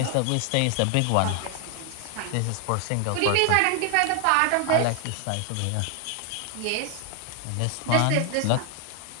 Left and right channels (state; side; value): different; both; correlation 0.00